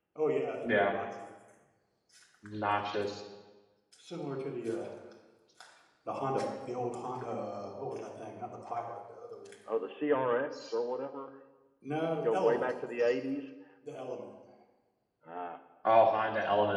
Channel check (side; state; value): both; identical; correlation 1.00